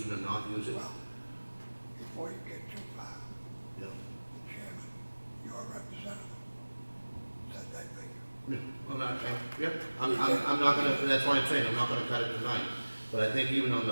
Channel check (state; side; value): inverted; both; correlation -1.00